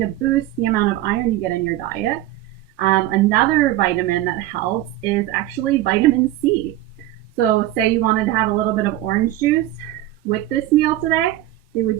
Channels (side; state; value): left; quieter; 14.5 dB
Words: to boost the amount of iron you get in your diet, another vitamin that helps is actually vitamin C. So say you wanted to have a little bit of orange juice with this meal today, it would